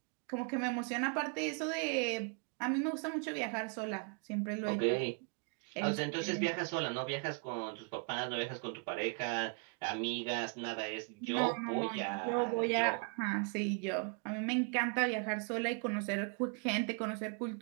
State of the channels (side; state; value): left; quieter; 36.8 dB